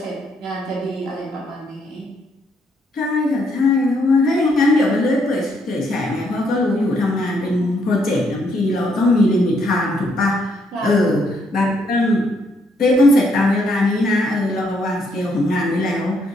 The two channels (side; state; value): both; normal; correlation 0.73